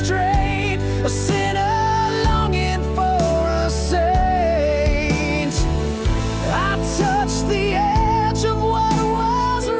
a sinner longing for a saint.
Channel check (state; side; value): identical; both; correlation 1.00